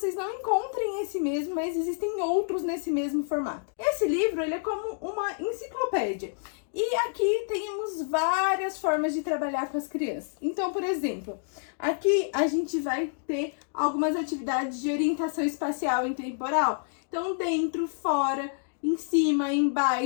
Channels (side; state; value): right; silent; digital silence